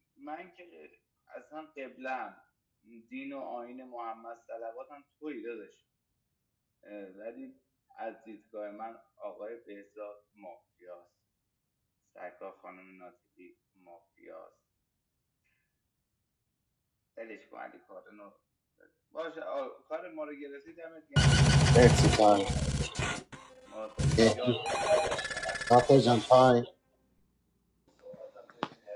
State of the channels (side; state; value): both; identical; correlation 1.00